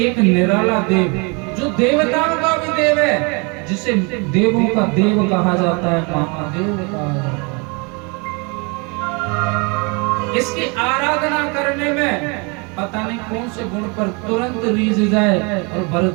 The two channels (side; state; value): left; quieter; 31.4 dB